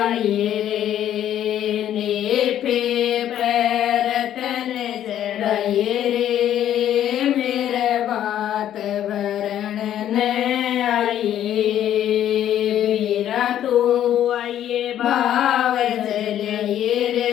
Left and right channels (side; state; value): right; quieter; 11.1 dB